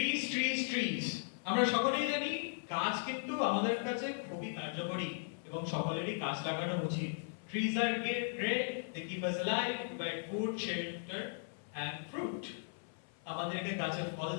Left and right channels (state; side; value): silent; right; 53 dB below the other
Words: ট্রিজ ট্রিজ। আমরা সকলেই জানি গাছ কিন্তু আমাদের কাছে খুবই কার্যকরী এবং সকলেরই গাছ লাগানো উচিত। Trees are great, they keep us alive, provide food, shelter and fruit. আমাদেরকে গাছে ফল